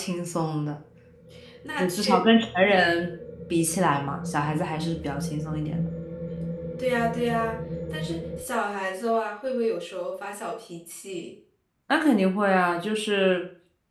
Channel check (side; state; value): both; identical; correlation 1.00